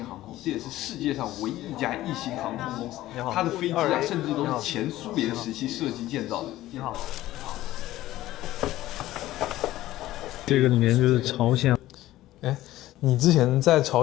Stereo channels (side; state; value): right; quieter; 15.5 dB